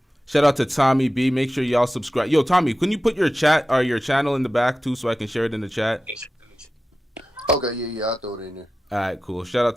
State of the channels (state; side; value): normal; both; correlation 0.93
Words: Shout out to Tommy B. Make sure y'all subscribe. Yo, Tommy, can you put your chat or your channel in the back too, so I can share it in the chat? Okay, yeah, I'll throw it in there. All right, cool. Shout out